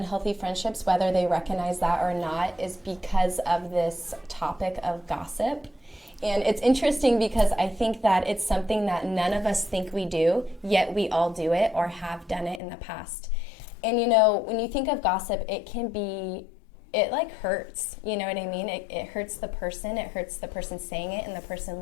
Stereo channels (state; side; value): drops out; right; at 12.6 s